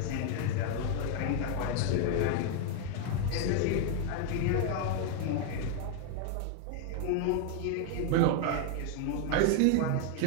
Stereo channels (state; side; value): different; both; correlation 0.00